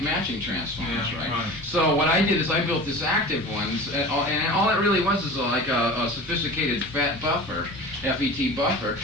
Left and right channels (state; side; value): normal; both; correlation 0.36